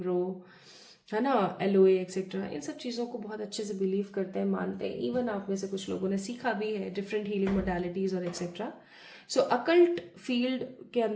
है ना, एलओए एक्सेट्रा, इन सब चीज़ों को बहुत अच्छे से बिलीव करते हैं, मानते हैं। इवन आप में से कुछ लोगों ने सीखा भी है डिफरेंट हीलिंग मोडालिटीज और एक्सेट्रा। सो अकल्ट फील्ड के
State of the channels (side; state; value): both; identical; correlation 1.00